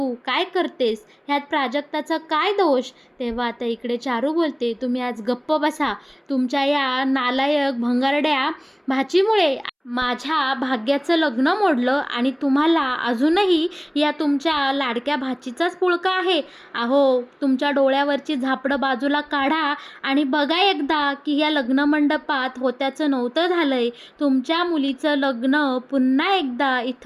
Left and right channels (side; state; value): both; identical; correlation 1.00